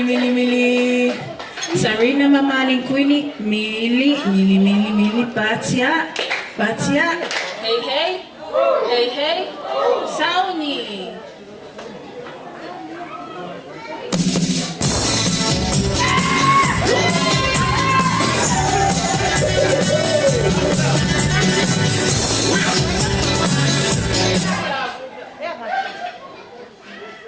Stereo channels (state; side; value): identical; both; correlation 1.00